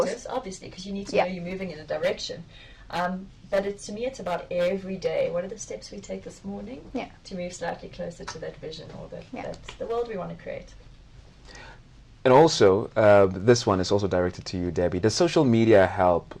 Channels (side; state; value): both; identical; correlation 1.00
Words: obviously, because you need to know you're moving in a direction. But to me, it's about every day. What are the steps we take this morning to move slightly closer to that vision or that's the world we want to create? And also, this one is also directed to you, Debbie. Does social media help